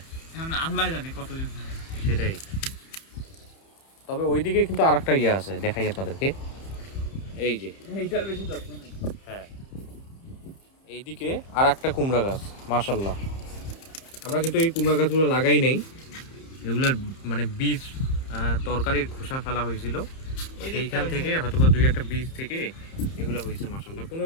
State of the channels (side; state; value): right; late; 30 ms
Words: এখন আল্লাহ জানে কতদিন ধরে। সেটাই। তবে ওইদিকে কিন্তু আর একটা ইয়ে আছে, দেখাই আপনাদেরকে। এই যে, এইটার বেশি যত্ন নেই। হ্যাঁ, এইদিকে আর একটা কুমড়া গাছ। মাশাল্লাহ, আমরা কিন্তু এই কুমড়া গাছগুলো লাগাই নাই, এগুলার মানে বীজ তরকারির খোসা ফেলা হয়েছিল, সেইখান থেকে হয়তো বা দুই একটা বীজ থেকে এগুলো হয়েছে। মাশাল্লাহ, কোনো